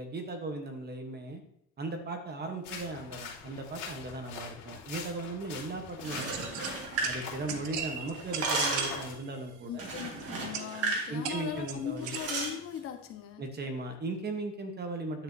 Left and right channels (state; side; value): normal; both; correlation 0.17